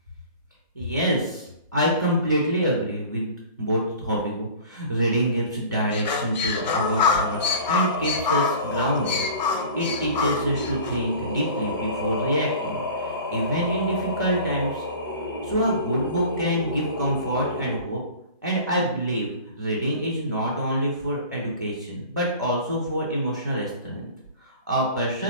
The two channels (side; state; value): both; inverted; correlation -0.41